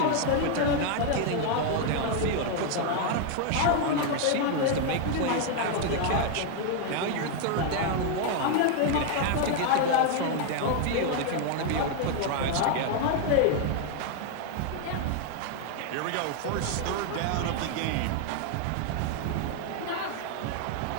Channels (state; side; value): different; both; correlation 0.01